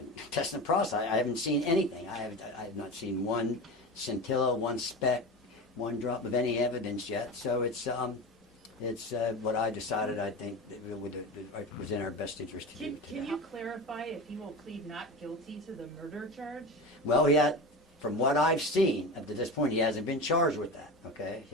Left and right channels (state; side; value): normal; both; correlation 0.27